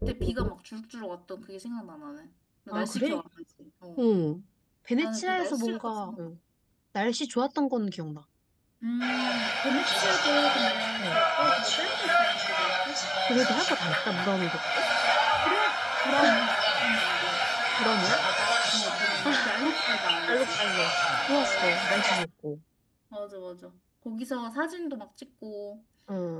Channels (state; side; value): identical; both; correlation 1.00